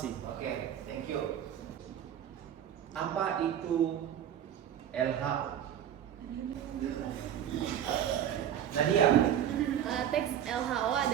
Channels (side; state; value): left; quieter; 10.1 dB